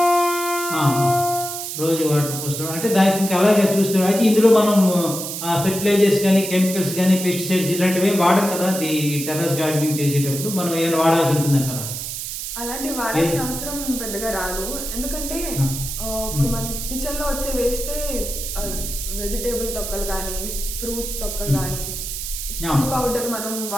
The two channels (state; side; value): noise; right; hiss, 6 dB below the sound